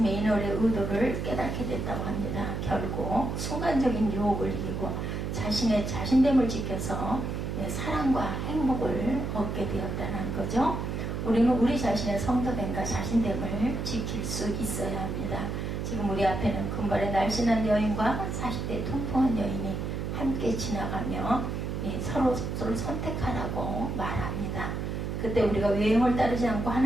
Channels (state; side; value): noise; right; hum, 3 dB below the sound